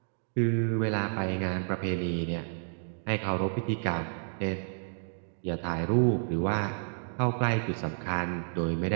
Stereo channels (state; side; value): silent; left; digital silence